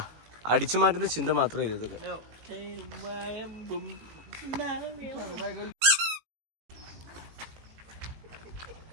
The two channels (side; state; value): left; late; 18 ms